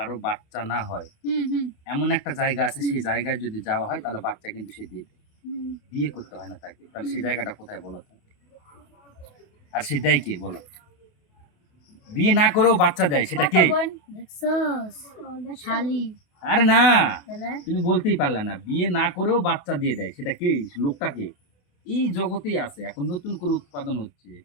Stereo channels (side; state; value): right; late; 28 ms